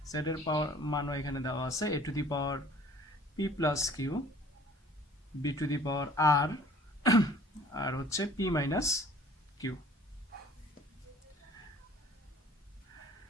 এর পাওয়ার মানও এখানে দেওয়া আছে, a to the power p plus q b to the power r আর হচ্ছে p মাইনাস q।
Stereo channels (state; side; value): normal; both; correlation 0.51